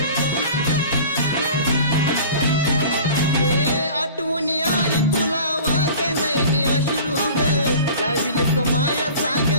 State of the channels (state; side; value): inverted; both; correlation -0.42